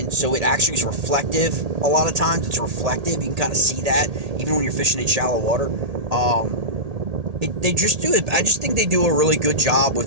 so it actually is reflective. A lot of times it's reflective. You can kind of see that even when you're fishing in shallow water. They just do it. I just think they do a really good job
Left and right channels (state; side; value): late; left; 1.8 ms